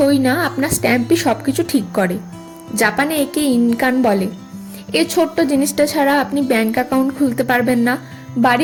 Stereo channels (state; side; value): identical; both; correlation 1.00